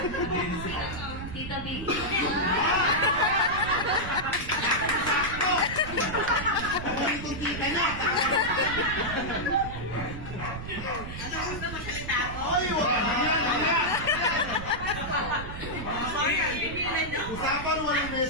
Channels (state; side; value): noise; right; rumble, 9 dB below the sound